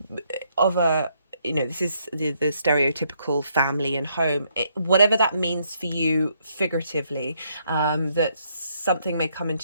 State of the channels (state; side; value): inverted; both; correlation -0.72